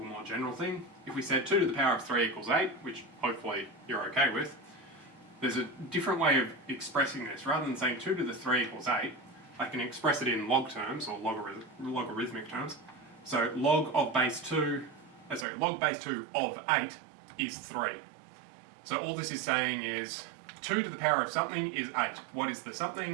more general thing. If we said 2 to the power of 3 equals 8, which hopefully you're okay with, there's a different way of expressing this. Rather than saying 2 to the 3 equals 8, I can express it in log terms, or logarithmic terms. So log base 2 of 8 is 3. So all this is saying is 2 to the power of something is 8. What is the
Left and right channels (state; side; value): drops out; left; at 15.5 s